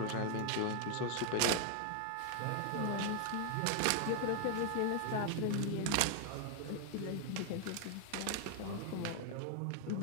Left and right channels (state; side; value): different; both; correlation 0.00